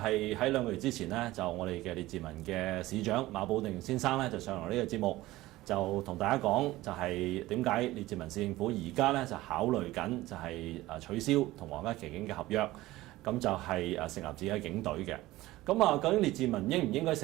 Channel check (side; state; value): left; quieter; 17.6 dB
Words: 喺2個月之前呢，就我哋嘅列治文嘅市長馬寶定先生咧，就上嚟呢個節目，就同大家講，就係點解列治文市政府而家咧就考慮緊就係取消同皇家騎警嘅合約。咁就係成立自己嘅警隊嘅。咁究竟列治文應唔應該